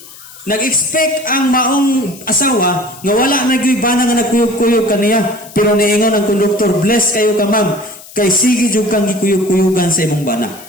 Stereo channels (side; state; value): left; noise; hiss, 19 dB below the sound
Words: Nag-expect ang maong asawa nga wala na gyud bana nga nagkuyog-kuyog kaniya, pero niingon ang konduktor, bless kayo ka ma'am, kay sige jud kang gikuyog-kuyogan sa imong bana.